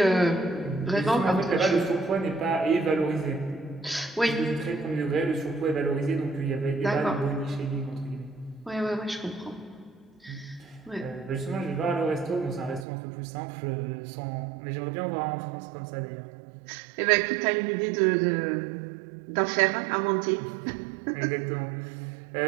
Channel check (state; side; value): drops out; left; at 12.9 s